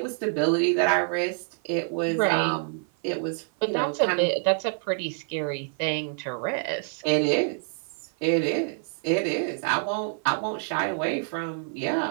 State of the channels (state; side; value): silent; left; 55 dB below the other